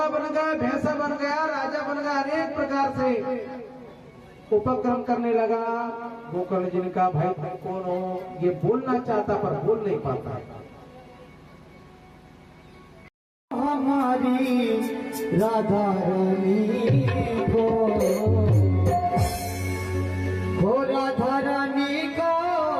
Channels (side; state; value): both; identical; correlation 1.00